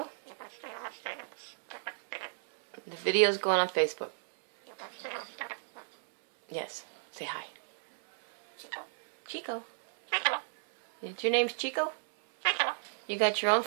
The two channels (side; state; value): left; silent; 56 dB below the other